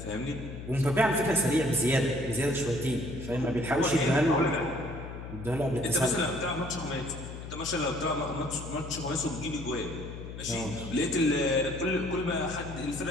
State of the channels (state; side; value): noise; left; hum, 10 dB below the sound